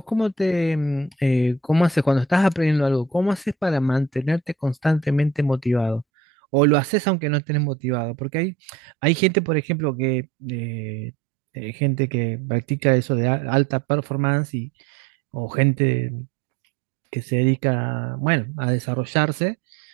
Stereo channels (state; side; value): drops out; left; at 6.1 s